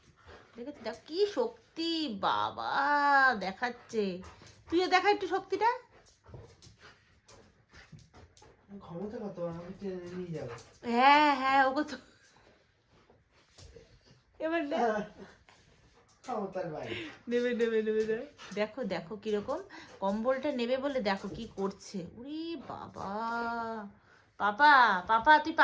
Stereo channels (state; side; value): identical; both; correlation 1.00